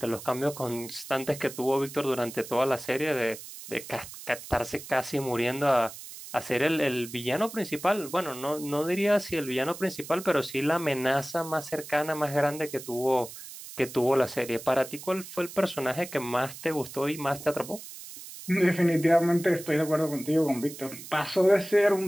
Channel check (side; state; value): right; noise; hiss, 13 dB below the sound